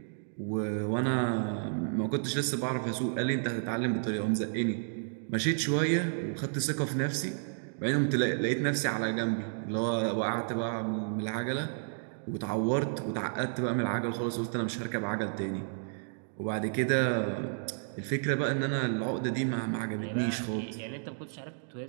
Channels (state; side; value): silent; left; digital silence